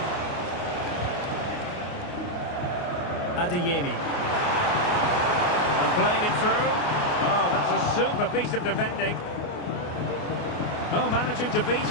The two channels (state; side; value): late; right; 29 ms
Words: Adeyemi. And playing it through. Oh, that's a super piece of defending. Oh, managing to beat